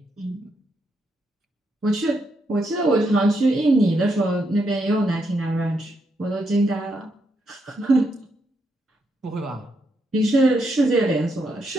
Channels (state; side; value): normal; both; correlation 0.80